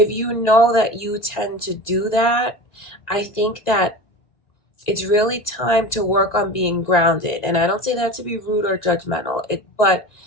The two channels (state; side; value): late; right; 1.9 ms